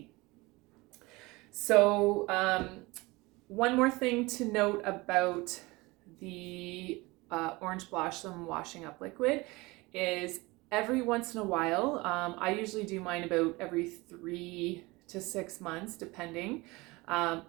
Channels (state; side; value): quieter; left; 23.0 dB